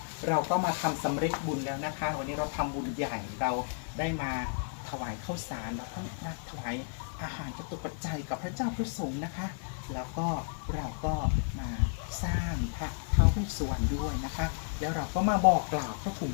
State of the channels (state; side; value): silent; right; 56 dB below the other